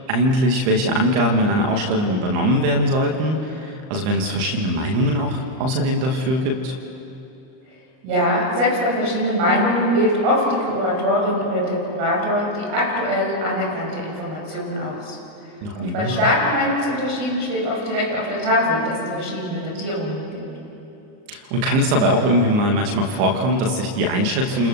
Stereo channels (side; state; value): left; late; 38 ms